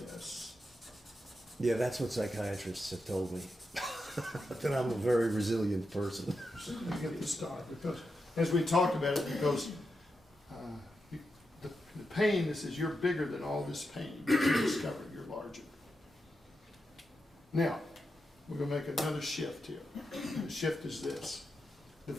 Yeah, that's what psychiatrists have told me. That I'm a very resilient person. You get the star because, as we talked about it, because the pain, this is, you're bigger than all this pain. You discovered you're larger. Now, we're going to make another shift here. The shift is this.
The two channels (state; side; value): normal; both; correlation 0.87